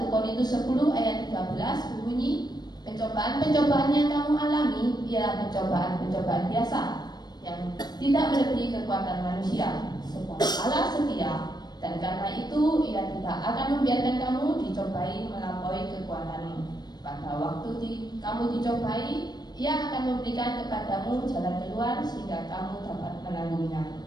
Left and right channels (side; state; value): right; late; 0.20 ms